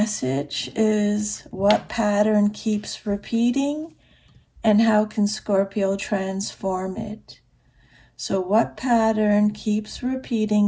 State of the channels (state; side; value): identical; both; correlation 1.00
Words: is what pattern keeps repeating and how can Scorpio transform it? So what pattern keeps